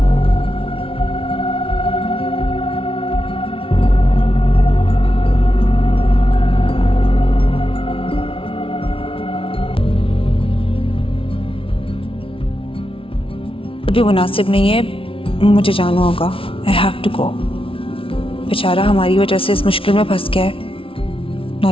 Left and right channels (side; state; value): right; late; 0.26 ms